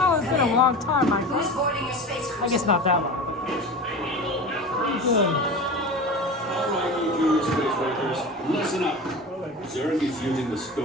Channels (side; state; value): both; normal; correlation 0.31